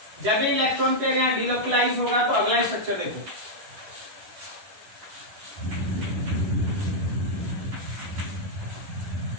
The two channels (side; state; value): left; late; 11 ms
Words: जब भी इलेक्ट्रॉन पेयर यहां डीलोकलाइज होगा तो अगला स्ट्रक्चर देखो।